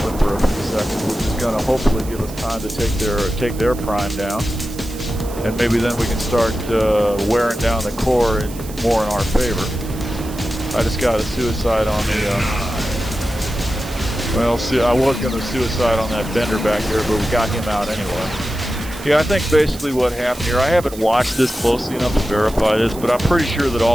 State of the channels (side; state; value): right; noise; hiss, 16 dB below the sound